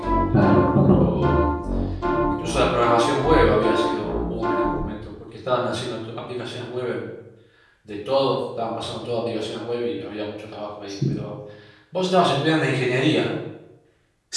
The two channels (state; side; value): identical; both; correlation 1.00